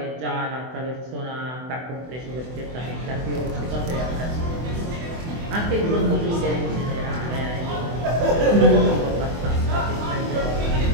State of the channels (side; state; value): left; late; 24 ms